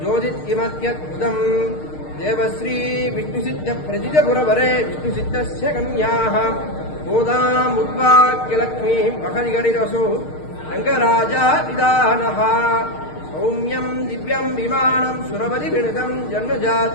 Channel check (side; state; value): right; late; 6.5 ms